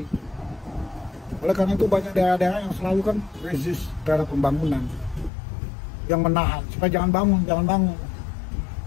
Oleh karena itu banyak daerah-daerah yang selalu kan resist terhadap pembangunan, yang menahan supaya jangan bangun, jangan bangun.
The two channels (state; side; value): drops out; right; at 5.3 s